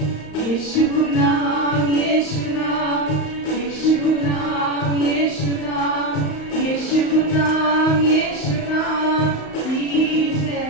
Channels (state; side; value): late; right; 35 ms